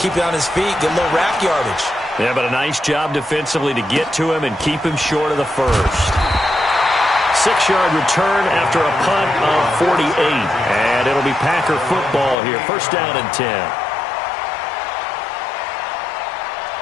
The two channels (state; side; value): drops out; right; at 12.4 s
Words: it on his feet, get a little rack yardage. Yeah, but a nice job defensively to get to him and keep him short of the first. 6-yard return after a punt of 48. And it'll be Packer football here. First down and 10.